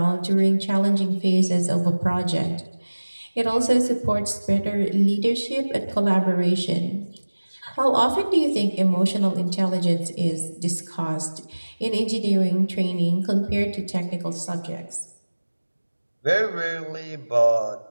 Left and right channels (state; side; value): inverted; both; correlation -1.00